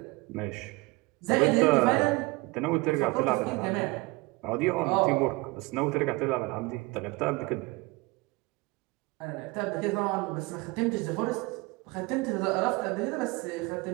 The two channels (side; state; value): left; quieter; 23.9 dB